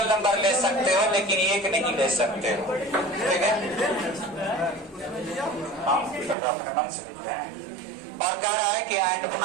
नंबर ले सकते हो लेकिन 1 नहीं ले सकते हो, ठीक है। हाँ, और कह रहा है कि एंड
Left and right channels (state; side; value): drops out; left; at 6.4 s